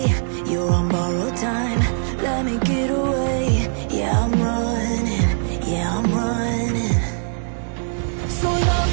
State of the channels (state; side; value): silent; left; digital silence